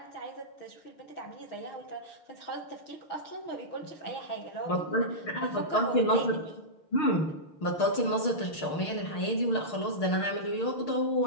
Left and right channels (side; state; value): right; late; 6.5 ms